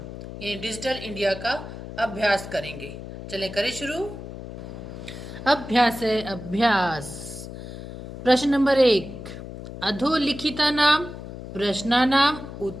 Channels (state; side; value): noise; left; hum, 11 dB below the sound